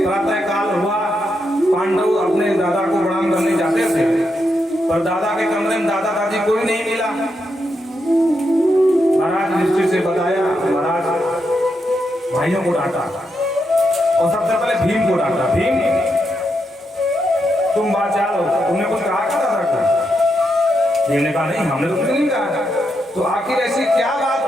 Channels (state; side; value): normal; both; correlation 0.82